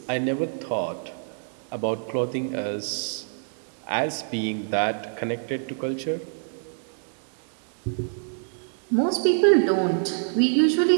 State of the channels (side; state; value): left; silent; 61 dB below the other